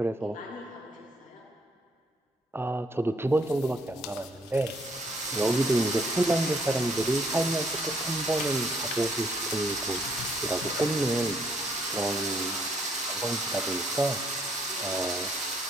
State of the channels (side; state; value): both; normal; correlation 0.68